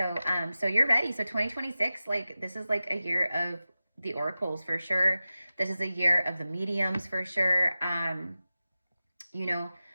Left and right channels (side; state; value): both; inverted; correlation -0.95